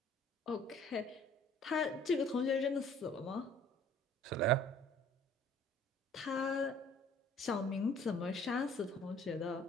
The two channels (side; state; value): both; normal; correlation 0.54